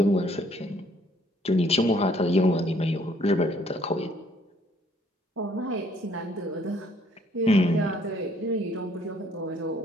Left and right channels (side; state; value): both; normal; correlation 0.63